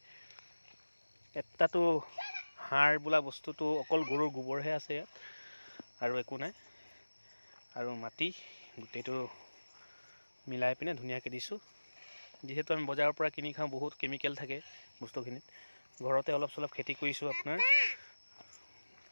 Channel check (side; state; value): both; inverted; correlation -1.00